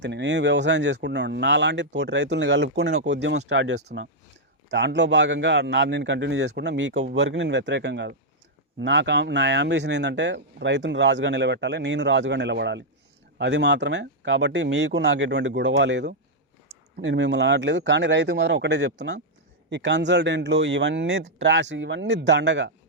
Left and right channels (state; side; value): normal; both; correlation -0.05